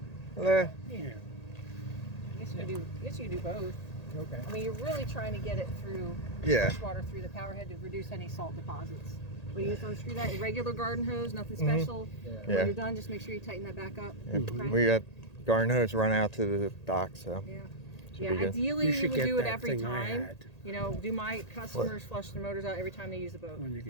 Eh, Yeah. I guess you could do both. Okay. I mean, you're really trying to get it through Yeah. fresh water through the power head to reduce any salt deposits. But you just unscrew that, your regular garden hose, nothing special. Yeah. When Yeah. you're done, just make sure you tighten that back up. Yeah, we got garden hose run out to the dock, so Yeah. should Yeah, be good. ideally You you should would get do it that every thing I time. had. You know, do my customers flush their motors out every time they use the boat? When you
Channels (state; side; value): late; right; 1.8 ms